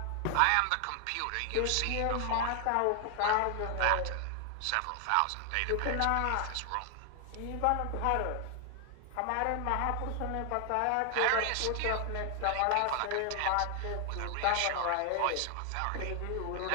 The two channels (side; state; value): both; different; correlation 0.00